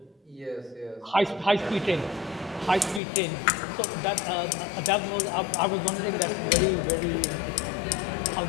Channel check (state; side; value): drops out; right; at 3.0 s